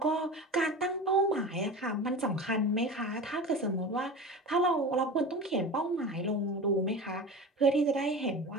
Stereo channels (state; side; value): normal; both; correlation 0.31